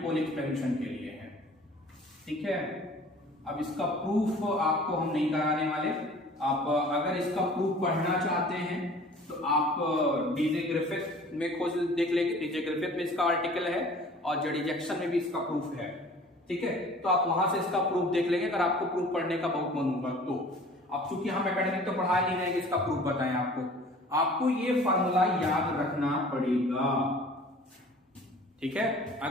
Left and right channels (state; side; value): normal; both; correlation 0.48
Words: एक्सपेंशन के लिए है। ठीक है, अब इसका प्रूफ आपको हम नहीं कराने वाले, आप अगर इसका प्रूफ पढ़ना चाहते हैं तो आप डीजे ग्रिफिथ में खोज देख लेंगे, डीजे ग्रिफिथ में इसका आर्टिकल है और जेडी जैक्सन में भी इसका प्रूफ है। ठीक है, तो आप वहां से इसका प्रूफ देख लेंगे अगर आपको प्रूफ पढ़ने का बहुत मन होगा तो। अब चूंकि हम एकेडमिक तो पढ़ा नहीं रहे, इसका प्रूफ बताएं आपको ये फार्मूला याद रखना पड़ेगा। ठीक है,